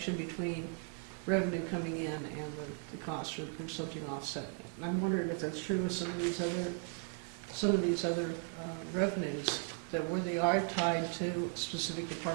between revenue coming in and the cost, or there's something offsetting it. And I'm wondering if that's true with some of these other revenues, that where they are tied to a specific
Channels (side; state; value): left; quieter; 38.1 dB